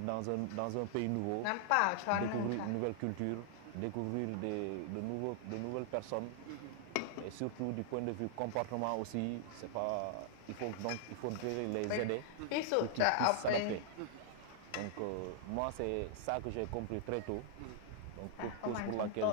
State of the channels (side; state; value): both; different; correlation 0.00